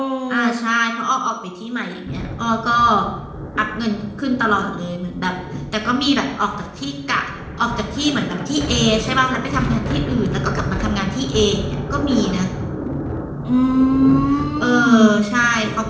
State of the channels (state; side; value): identical; both; correlation 1.00